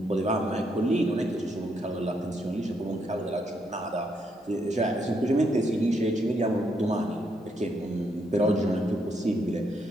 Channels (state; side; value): normal; both; correlation 0.76